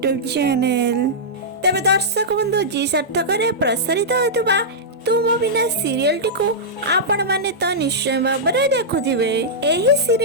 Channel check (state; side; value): normal; both; correlation -0.11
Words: channel. तेरे दर्शक बंधु जी सार्थक प्रसारित होता तुम बिना सीरियल टी को आपण माने तो निश्चय भाव देखुथिबे। एही